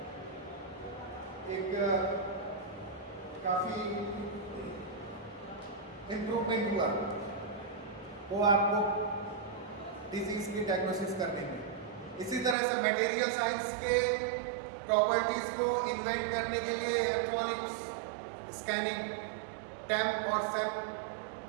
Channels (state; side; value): drops out; left; at 12.6 s